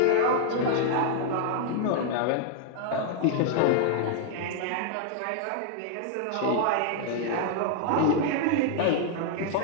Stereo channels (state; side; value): different; both; correlation 0.00